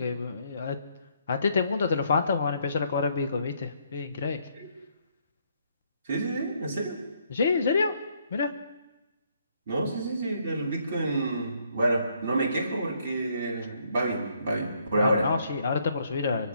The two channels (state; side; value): inverted; both; correlation -0.70